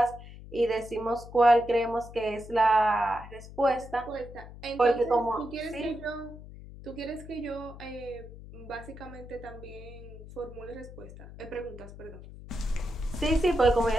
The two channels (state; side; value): noise; left; hum, 15 dB below the sound